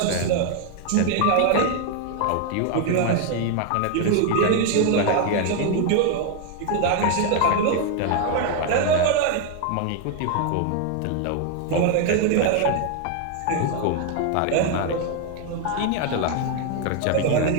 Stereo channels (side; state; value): both; different; correlation 0.00